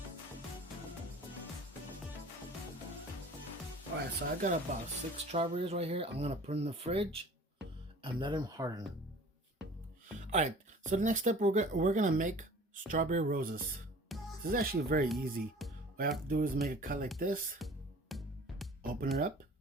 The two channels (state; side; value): normal; both; correlation 0.46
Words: Alright, so I got about 6 strawberries right here. I'm gonna put in the fridge and let them harden. Alright, so the next step, we're gonna make strawberry roses. This is actually very easy. What I have to do is make a cut like this, open it up,